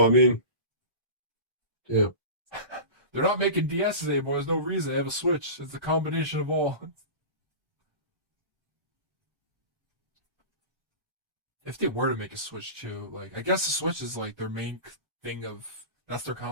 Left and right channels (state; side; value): late; left; 1.3 ms